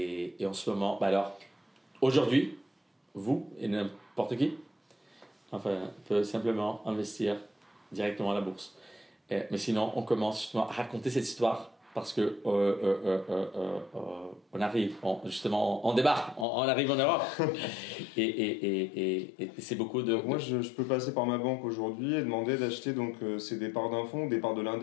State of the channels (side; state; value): right; drops out; at 16.4 s